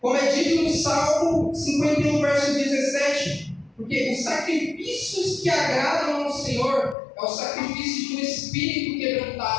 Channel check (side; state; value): right; drops out; at 7.0 s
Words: como é dito no Salmo 51, verso 17, porque os sacrifícios que agradam ao Senhor é o sacrifício de um espírito